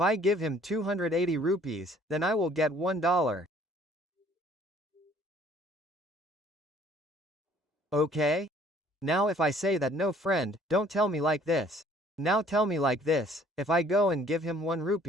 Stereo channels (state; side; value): normal; both; correlation 0.57